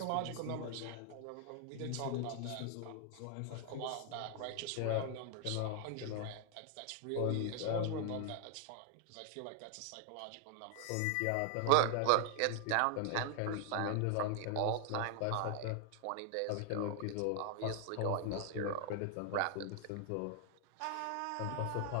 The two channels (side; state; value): both; different; correlation 0.00